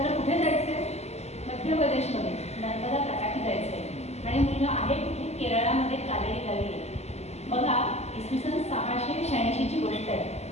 कुठे जायचं आहे? मध्य प्रदेशमध्ये नर्मदा तटाकी जायचं आहे. आणि मुलगा आहे कुठे? केरळामध्ये कालेडी गावी. बघा, इसवी सन 686ची गोष्ट आहे.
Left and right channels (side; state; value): right; late; 0.32 ms